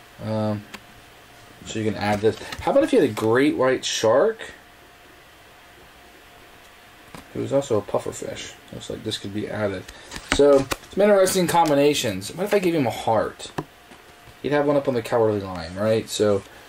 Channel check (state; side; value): identical; both; correlation 1.00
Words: So you can add this. How about if you had a great white shark? It was also a puffer fish. Looks like this could be added. So, some interesting combinations. What if I gave him a heart? You'd have one up on the cowardly lion, right? So,